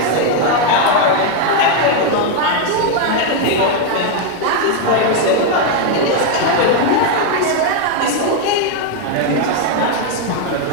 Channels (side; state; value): both; different; correlation 0.00